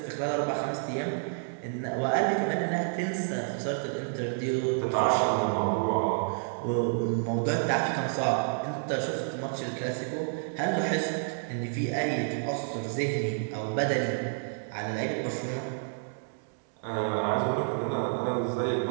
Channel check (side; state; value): left; silent; digital silence